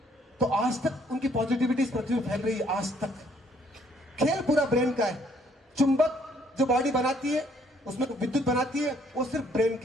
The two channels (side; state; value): both; normal; correlation 0.65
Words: तो आज तक उनकी पॉजिटिविटी इस पृथ्वी पर फैल रही है। आज तक खेल पूरा ब्रेन का है। चुंबक जो बॉडी बनाती है, उसमें विद्युत बनाती है, वो सिर्फ ब्रेन